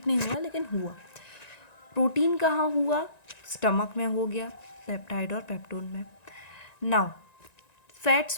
नहीं हुआ लेकिन हुआ। प्रोटीन कहाँ हुआ? स्टमक में हो गया, पेप्टाइड और पेप्टोन में। नाउ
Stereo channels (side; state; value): right; late; 1.9 ms